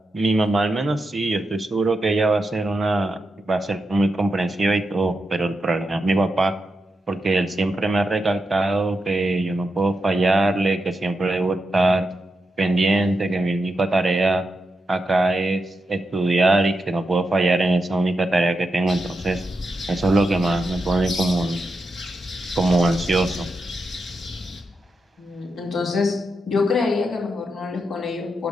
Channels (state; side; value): normal; both; correlation 0.86